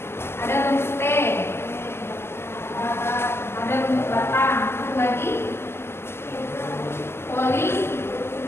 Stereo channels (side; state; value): right; late; 0.12 ms